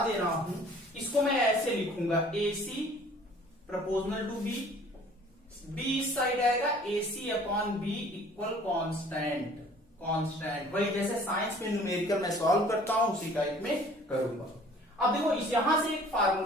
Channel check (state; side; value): normal; both; correlation 0.52